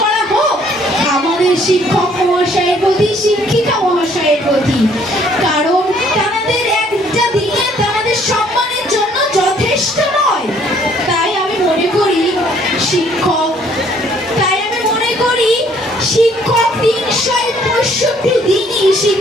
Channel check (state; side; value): normal; both; correlation 0.62